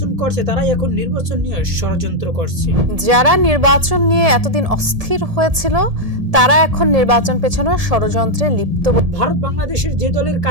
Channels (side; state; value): left; late; 1.7 ms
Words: করছে তারাই এখন নির্বাচন নিয়ে ষড়যন্ত্র করছে। যারা নির্বাচন নিয়ে এতদিন অস্থির হয়েছিল তারা এখন নির্বাচন পেছানোর ষড়যন্ত্রে লিপ্ত। ভারত বাংলাদেশের যে দলের